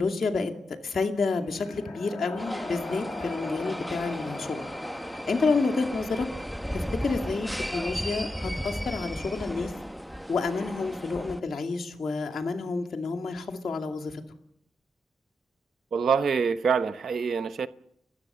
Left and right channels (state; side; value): normal; both; correlation 0.85